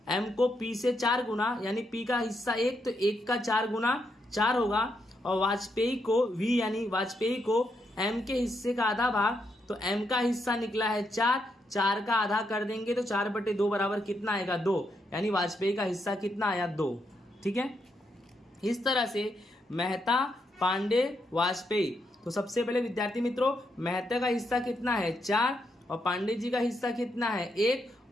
एम को पी से 4 गुना यानी पी का हिस्सा 1 तो 1 का 4 गुना 4 होगा। और वाजपेयी को वी यानी वाजपेयी को एम के हिस्से का आधा भाग, तो एम का हिस्सा निकला है 4, 4 का आधा कर देंगे तो 4/2 बराबर कितना आएगा 2, यानी वाजपेयी का हिस्सा कितना आया 2। ठीक है, इस तरह से मेहता, पांडे, वाजपेयी। तो सबसे पहले विद्यार्थी मित्रों मेहता का हिस्सा कितना है 4 और पांडे जी का हिस्सा कितना है 1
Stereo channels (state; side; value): normal; both; correlation 0.80